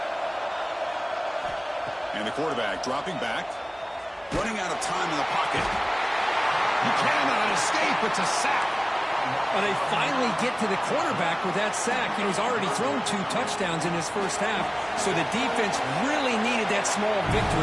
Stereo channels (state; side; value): identical; both; correlation 1.00